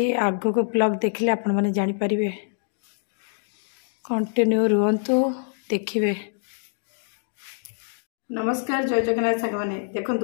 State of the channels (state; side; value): silent; right; digital silence